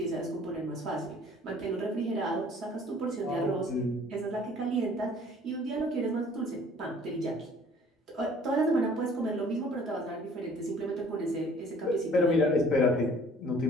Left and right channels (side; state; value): both; normal; correlation 0.53